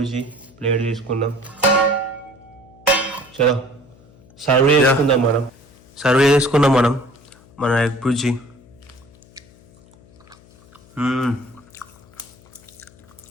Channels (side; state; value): left; noise; hum, 26 dB below the sound